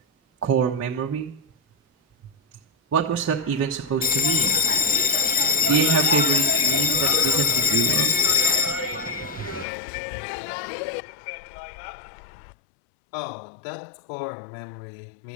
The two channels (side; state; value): right; drops out; at 9.7 s